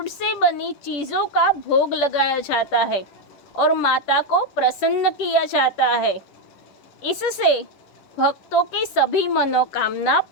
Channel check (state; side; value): late; right; 10 ms